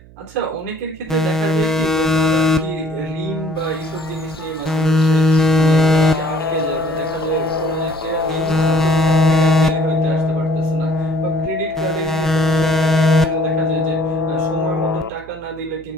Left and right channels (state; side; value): noise; right; hum, 23 dB below the sound